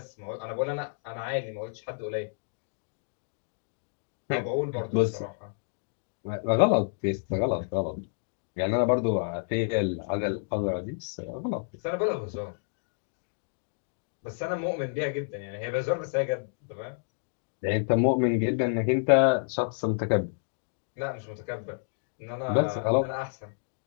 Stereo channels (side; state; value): right; silent; digital silence